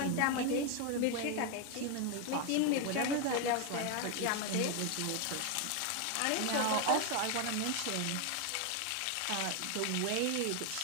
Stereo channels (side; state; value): both; different; correlation 0.01